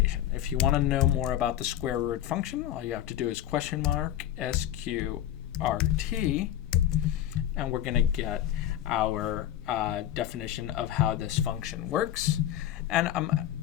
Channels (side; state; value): right; quieter; 11.9 dB